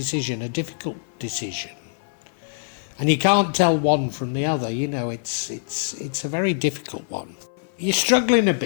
a difficult decision. And you can't tell one from the other, you know, it's a very difficult one. You're struggling a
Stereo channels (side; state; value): right; silent; 56 dB below the other